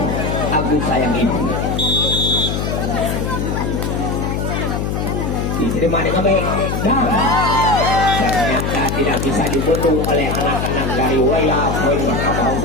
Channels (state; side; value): noise; left; hum, 1 dB below the sound